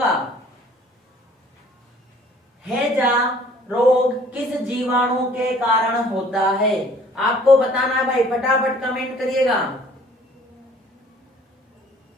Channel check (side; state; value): both; normal; correlation 0.54